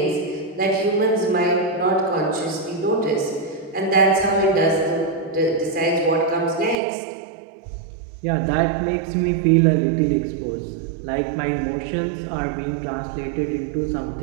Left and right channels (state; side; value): drops out; left; at 6.8 s